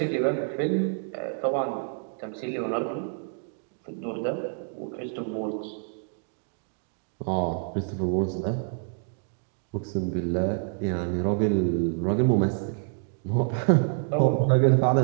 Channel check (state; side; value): silent; left; 60 dB below the other